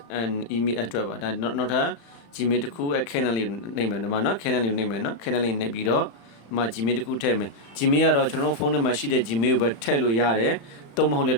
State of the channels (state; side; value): late; right; 35 ms